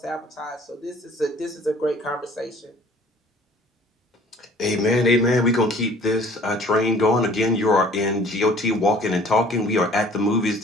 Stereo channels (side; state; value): both; normal; correlation 0.52